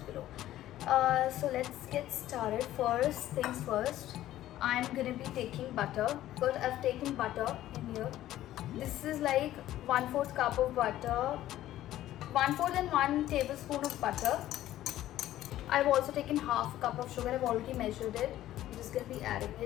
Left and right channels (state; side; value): quieter; right; 13.7 dB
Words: below. So let's get started. First things first, I'm going to be taking butter. But I've taken butter in here. This is like 1/4 cup of butter, 1/4 and 1 tablespoon of butter. I've also taken half a cup of sugar. I've already measured it. I'm just going to be adding